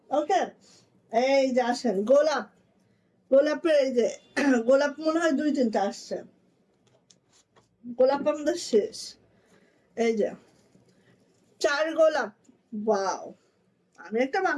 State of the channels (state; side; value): identical; both; correlation 1.00